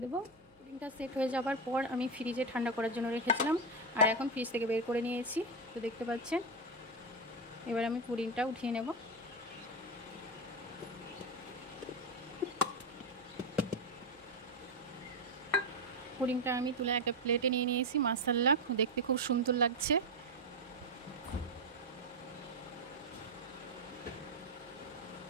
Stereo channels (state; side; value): noise; left; hum, 30 dB below the sound